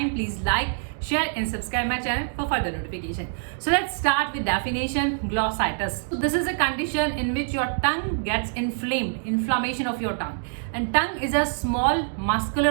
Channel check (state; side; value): silent; left; digital silence